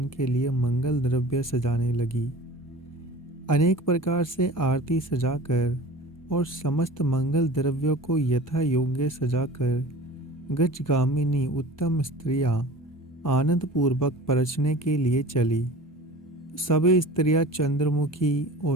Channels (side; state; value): both; normal; correlation 0.39